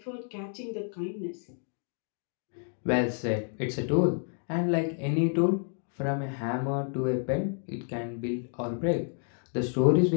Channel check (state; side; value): silent; right; 58 dB below the other